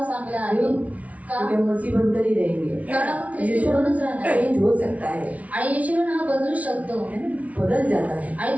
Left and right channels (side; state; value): left; late; 0.068 ms